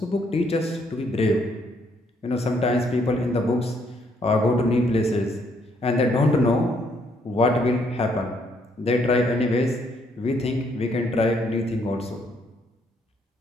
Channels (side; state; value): both; normal; correlation 0.70